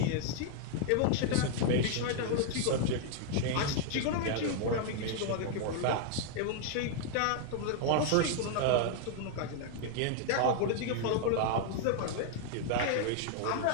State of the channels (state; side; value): different; both; correlation 0.00